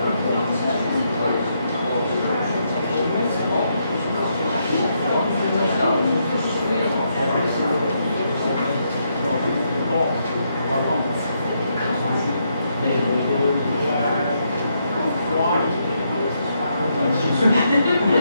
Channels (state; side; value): inverted; both; correlation -0.78